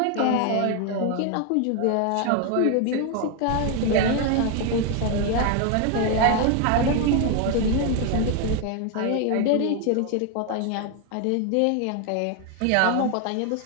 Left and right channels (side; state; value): both; different; correlation 0.01